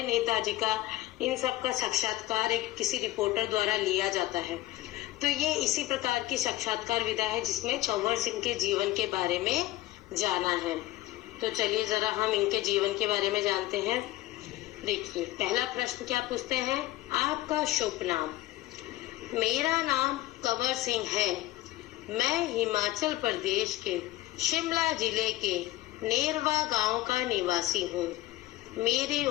नेताजी का, इन सब का साक्षात्कार एक किसी रिपोर्टर द्वारा लिया जाता है। तो ये इसी प्रकार की साक्षात्कार विधा है जिसमें कंवर सिंह के जीवन के बारे में जाना है। तो चलिए जरा हम इनके जीवन के बारे में जानते हैं। देखिए, पहला प्रश्न क्या पूछते हैं? आपका शुभ नाम? मेरा नाम कंवर सिंह है। मैं हिमाचल प्रदेश के शिमला जिले के नेरवा गांव का निवासी हूँ। मेरी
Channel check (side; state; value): right; quieter; 16.7 dB